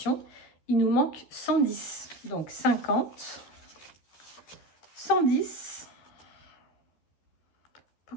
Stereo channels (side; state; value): right; late; 13 ms